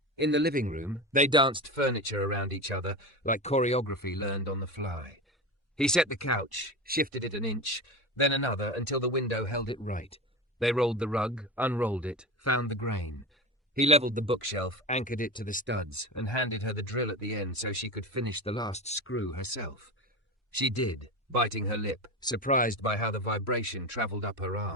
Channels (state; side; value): normal; both; correlation 0.25